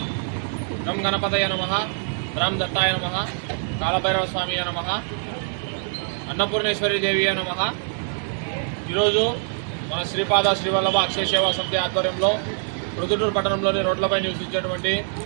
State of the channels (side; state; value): left; silent; 63 dB below the other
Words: గం గణపతయ నమః, రామ్ దత్తాయ నమః, కాలభైరవ స్వామి నమః, అన్నపూర్ణేశ్వరి దేవి నమః. ఈరోజు మన శ్రీపాద శ్రీవల్లభ అక్షయ సేవా సమితి ఆధ్వర్యంలో ప్రొద్దుటూరు పట్టణంలోని రోడ్లపై నివసించేటువంటి